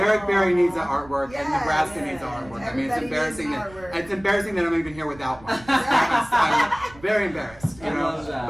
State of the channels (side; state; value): right; noise; rumble, 22 dB below the sound